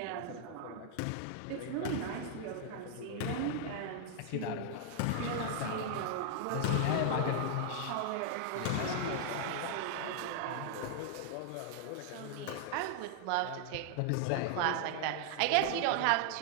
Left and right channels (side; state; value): both; different; correlation 0.00